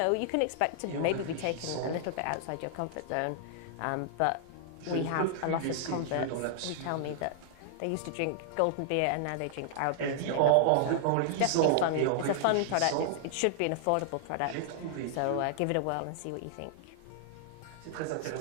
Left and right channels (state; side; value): different; both; correlation 0.00